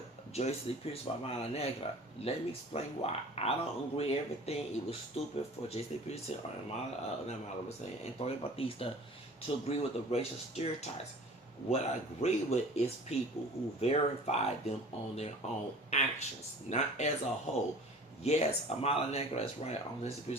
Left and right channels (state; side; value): normal; both; correlation 0.44